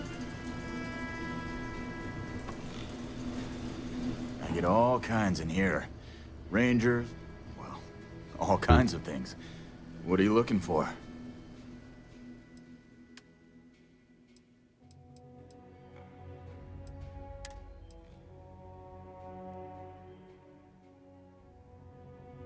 I get all kinds in here. Rangers, well, all kinds of things. What are you looking for?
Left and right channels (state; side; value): identical; both; correlation 1.00